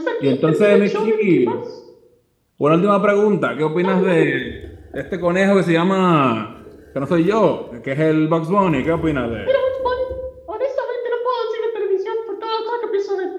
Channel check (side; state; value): both; identical; correlation 1.00